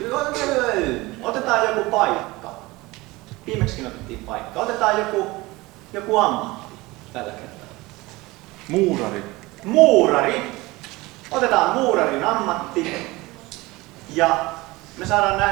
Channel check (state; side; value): quieter; left; 21.4 dB